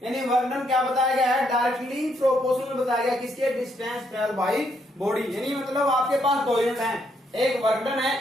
यानी वर्क डन क्या बताया गया है, डायरेक्टली प्रोपोर्शनल बताया गया किसके, डिस्टेंस ट्रेवल बाय बॉडी। यानी मतलब आपके पास 2 यूनिट हैं, एक वर्क डन है,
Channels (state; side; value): normal; both; correlation 0.74